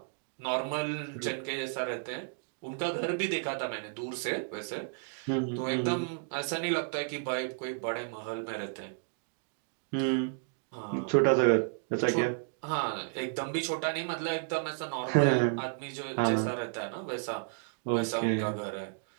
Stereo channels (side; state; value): left; silent; digital silence